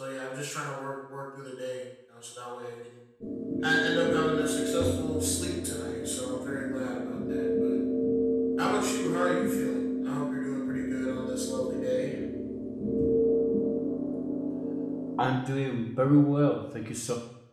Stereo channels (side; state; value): both; identical; correlation 1.00